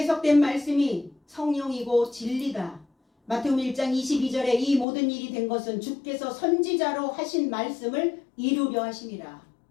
말씀이 성령이고 진리다. 마태복음 1장 22절에 이 모든 일이 된 것은 주께서 선지자로 하신 말씀을 이루려 하심이라.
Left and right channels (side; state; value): right; drops out; at 4.9 s